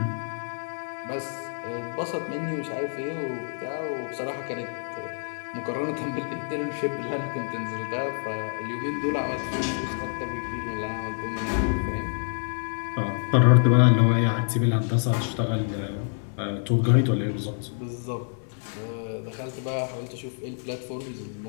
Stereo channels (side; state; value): right; silent; 60 dB below the other